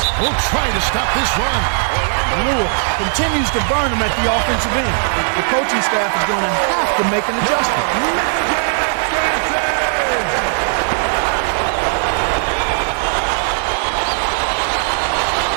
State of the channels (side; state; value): left; silent; digital silence